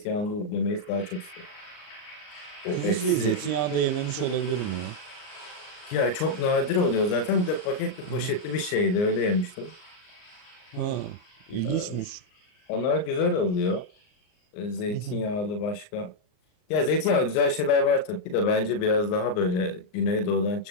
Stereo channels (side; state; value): right; late; 39 ms